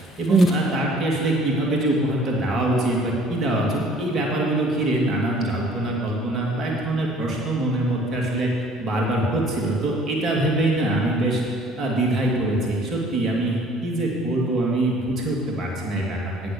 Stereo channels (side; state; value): both; normal; correlation 0.54